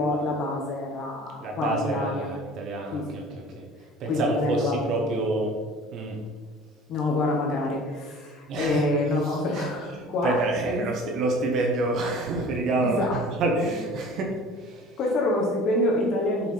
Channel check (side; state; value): both; normal; correlation 0.44